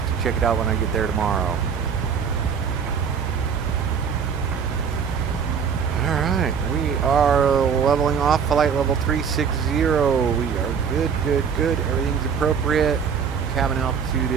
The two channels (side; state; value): left; quieter; 6.7 dB